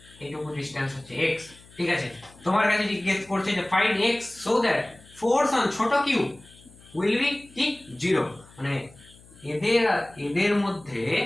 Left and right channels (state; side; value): noise; left; hum, 25 dB below the sound